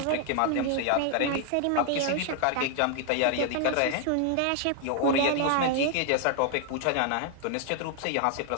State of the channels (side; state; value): both; different; correlation 0.00